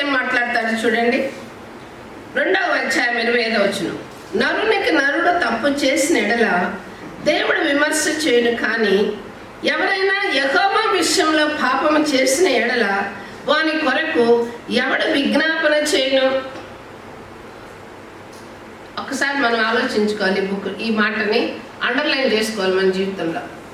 ఏం మాట్లాడతాడు చూడండి. 2వ అధ్యాయం 25వ వచనం, నరునికి నరుడు తప్పు చేసిన ఎడల దేవుడు విమర్శ చేయను, కానీ ఎవరైనా యెహోవా విషయంలో పాపము చేసిన ఎడల వాని కొరకు ఎవడు విజ్ఞాపన చేయను. ఒకసారి మనం ఆలోచించుకోవాలి. ఈ మాటని అండర్లైన్ చేసుకోవాలి మన జీవితంలో.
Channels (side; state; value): both; identical; correlation 1.00